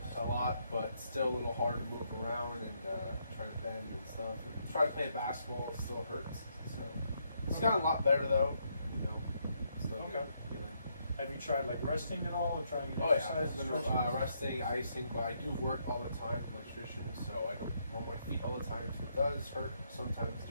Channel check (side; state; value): both; inverted; correlation -0.75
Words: a lot, but still a little hard to move around and try to bend and stuff. And try to play basketball, it still hurts. So it's gotten a lot better though, you know. Still Okay. Good. Have you tried like resting at all or trying to Oh exercise? yeah, resting, icing, but I do work all the time for electrician, so I don't run my feet all the time, so it does hurt sometimes